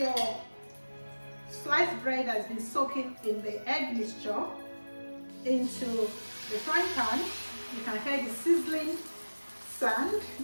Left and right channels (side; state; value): both; inverted; correlation -1.00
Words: sliced bread that has been soaking in the egg mixture into the frying pan. You can hear the sizzling sound.